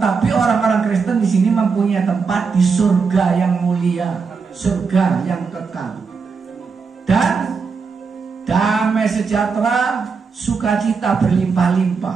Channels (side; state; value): left; quieter; 5.2 dB